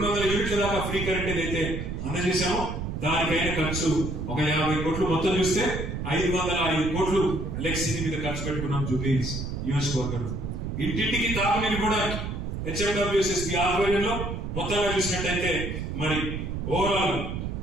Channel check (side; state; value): right; noise; rumble, 4 dB below the sound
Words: యూనిట్ల దాకా ఫ్రీ కరెంట్ ఏదైతే అందజేశామో దానికైనా ఖర్చు ఒక 50 కోట్లు. మొత్తం చూస్తే 505 కోట్లు ఎలక్ట్రిసిటీ మీద ఖర్చు పెట్టుకున్నాం జూబ్లీహిల్స్ నియోజకవర్గంలో. ఇంటింటికి తాగునీరు కూడా హెచ్ఎండబ్ల్యూఎస్ఎస్పీ ఆధ్వర్యంలో మొత్తంగా చూసినట్టయితే మరి ఓవరాల్